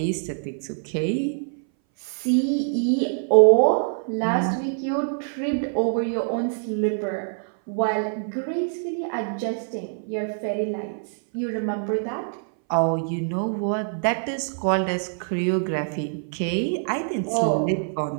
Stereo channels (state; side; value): silent; left; 60 dB below the other